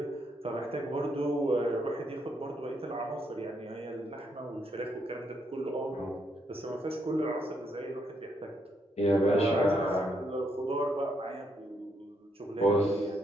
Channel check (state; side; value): normal; both; correlation 0.76